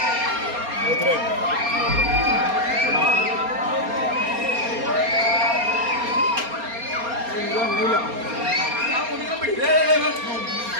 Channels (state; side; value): late; left; 4.3 ms